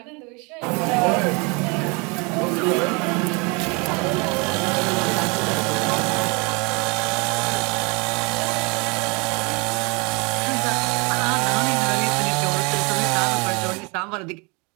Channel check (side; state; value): left; quieter; 30.0 dB